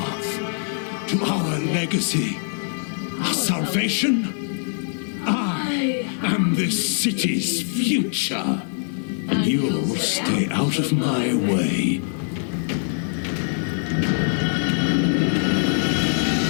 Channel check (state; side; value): silent; right; digital silence